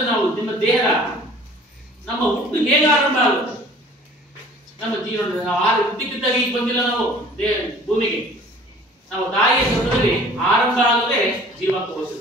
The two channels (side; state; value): both; normal; correlation 0.49